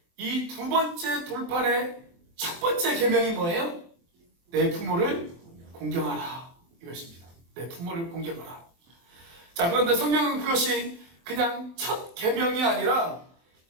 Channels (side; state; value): left; late; 23 ms